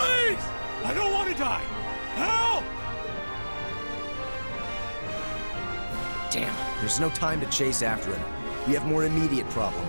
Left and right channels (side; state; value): both; inverted; correlation -1.00